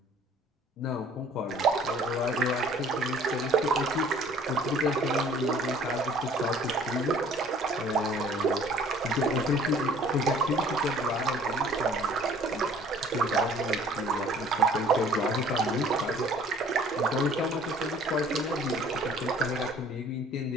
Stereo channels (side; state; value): both; normal; correlation 0.54